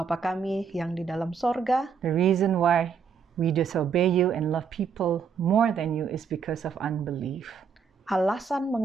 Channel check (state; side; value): quieter; left; 6.3 dB